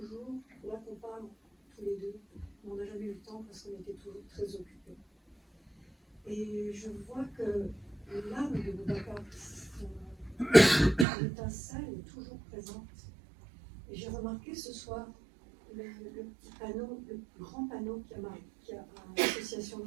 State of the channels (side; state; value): left; drops out; at 11.1 s